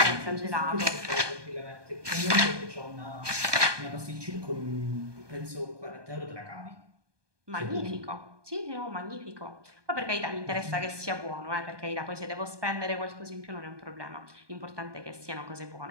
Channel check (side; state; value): left; late; 1.2 ms